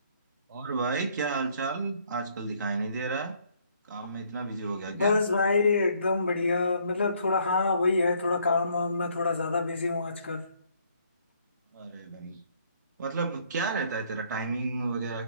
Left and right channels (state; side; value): inverted; both; correlation -0.65